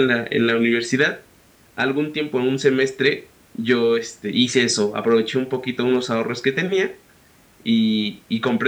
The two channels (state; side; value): identical; both; correlation 1.00